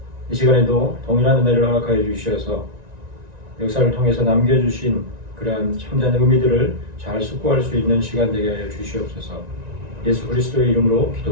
이 시간에도 동일한 은혜를 허락하여 주셔서 역사를 통해서 남겨주신 그러한 참된 의미들을 잘 숙고할 수 있는 시간 되게 하여 주시옵소서. 예수 그리스도의 이름으로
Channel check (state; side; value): late; left; 1.9 ms